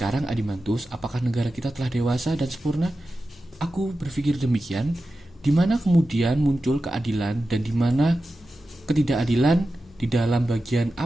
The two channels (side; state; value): both; normal; correlation 0.93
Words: Adimantus, apakah negara kita telah dewasa dan sempurna? Aku berpikir demikian. Di mana kemudian muncul keadilan dan di mana ketidakadilan? Di dalam bagian